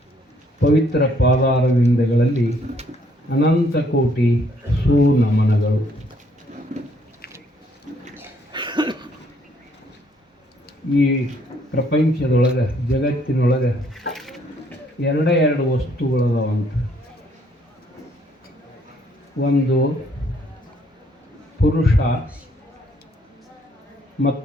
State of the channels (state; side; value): normal; both; correlation 0.67